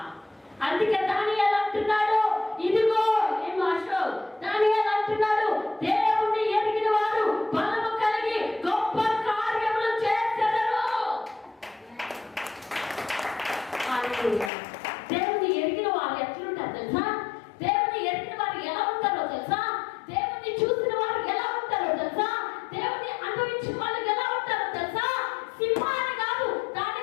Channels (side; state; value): right; drops out; at 14.5 s